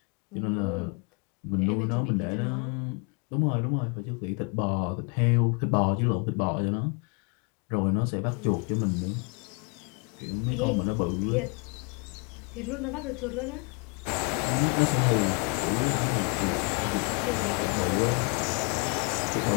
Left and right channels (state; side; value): quieter; right; 34.0 dB